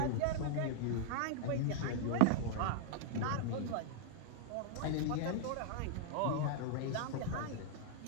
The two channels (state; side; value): different; both; correlation -0.01